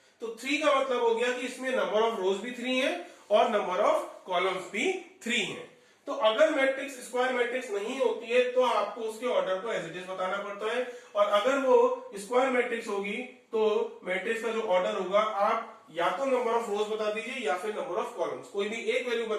तो 3 का मतलब हो गया कि इसमें नंबर ऑफ रोज भी 3 है और नंबर ऑफ कॉलम्स भी 3 है। तो अगर मैट्रिक्स स्क्वायर मैट्रिक्स नहीं होती है तो आपको उसके ऑर्डर को एज इट इज बताना पड़ता है, और अगर वो स्क्वायर मैट्रिक्स होगी तो मैट्रिक्स का जो ऑर्डर होगा आप या तो नंबर ऑफ रोज बता दीजिए या फिर नंबर ऑफ कॉलम्स, कोई भी एक वैल्यू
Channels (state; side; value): identical; both; correlation 1.00